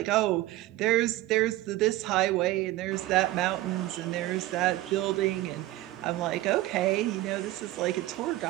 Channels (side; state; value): left; quieter; 16.9 dB